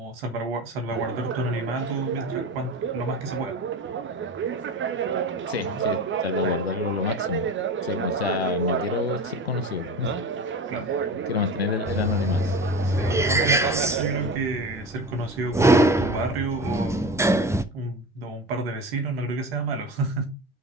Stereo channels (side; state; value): both; normal; correlation 0.30